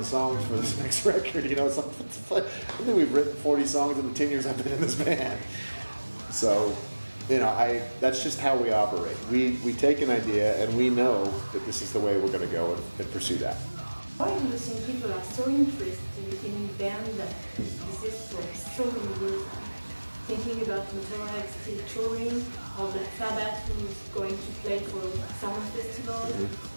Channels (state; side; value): inverted; both; correlation -1.00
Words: songs for this next record. It's like I think we've written 40 songs in the 10 years I've been in this band. So. That's just how we operate. We take an idea and we know that this is the way we're going to go and pursue that. Why do you think people are so interested in band that exist for so many years? Thinking about Motorhead still touring, or Black Sabbath who's going to play for Summer Festival,